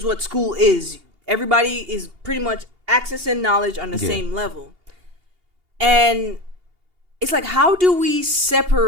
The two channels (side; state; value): left; late; 2.8 ms